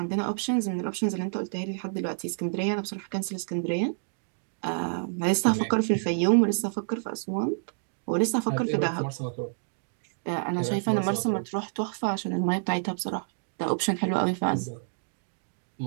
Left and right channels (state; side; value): silent; left; digital silence